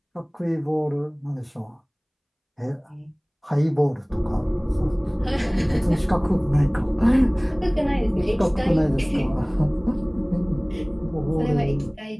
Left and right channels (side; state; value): both; identical; correlation 1.00